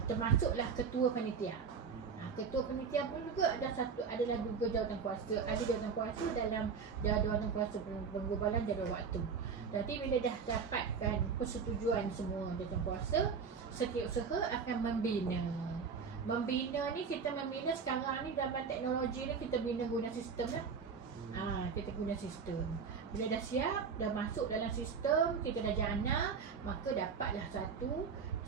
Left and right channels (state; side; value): quieter; left; 5.8 dB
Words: Termasuklah ketua panitia. Ketua panitia pun juga adalah juga jawatankuasa. Ada jawatankuasa dalam jawatankuasa penggubalan jadual waktu. Jadi bila dah dapatkan persetujuan semua jawatankuasa, setiausaha akan membina. Membina ni, kita membina sekarang ni dalam teknologi ni, kita bina guna sistem lah. Kita guna sistem. Bila dah siap, dah masuk dalam sistem, kita dah jana, maka dapatlah